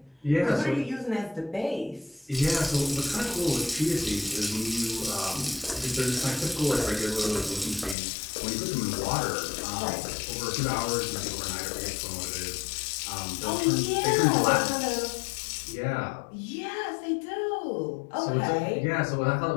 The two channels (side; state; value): right; drops out; at 8.0 s